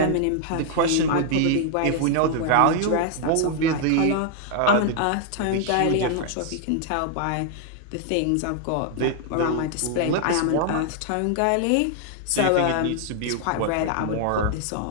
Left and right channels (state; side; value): different; both; correlation 0.00